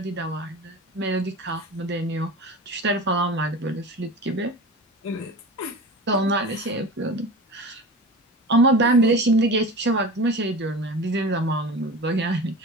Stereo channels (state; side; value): normal; both; correlation 0.33